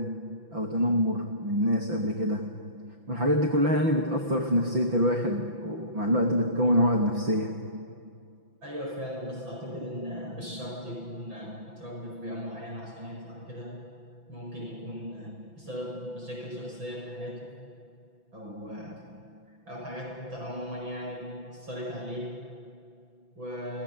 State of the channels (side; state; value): left; late; 6.0 ms